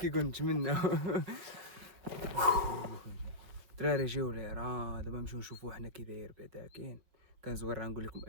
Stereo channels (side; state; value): left; late; 5.5 ms